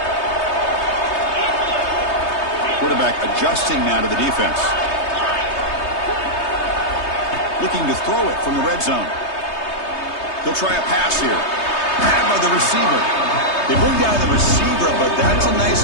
Quarterback adjusting now to the defense. Looking to throw it from the red zone. He'll try a pass here. Grabbed by the receiver. They bring down the receiver, but that's a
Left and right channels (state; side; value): late; right; 3.3 ms